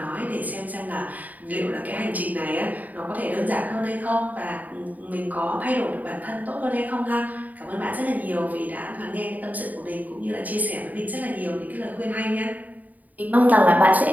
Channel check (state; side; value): late; left; 0.077 ms